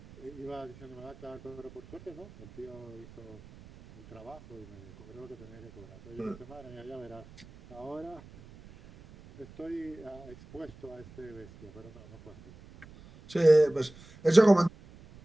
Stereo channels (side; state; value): right; noise; rumble, 20 dB below the sound